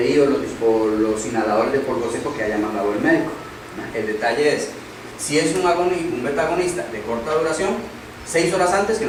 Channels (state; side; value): identical; both; correlation 1.00